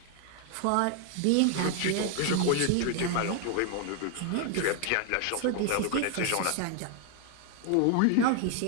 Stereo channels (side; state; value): both; different; correlation 0.00